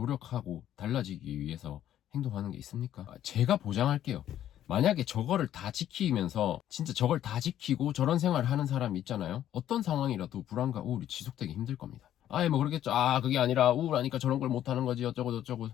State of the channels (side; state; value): right; quieter; 11.5 dB